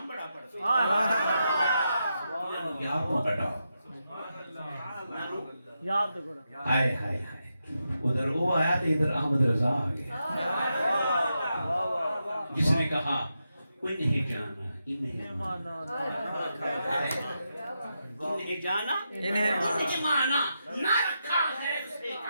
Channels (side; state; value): both; inverted; correlation -0.86